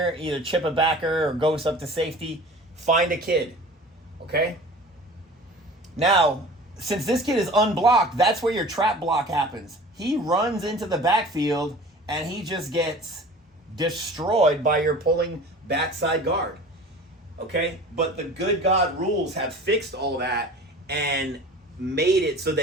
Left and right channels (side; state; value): both; normal; correlation 0.41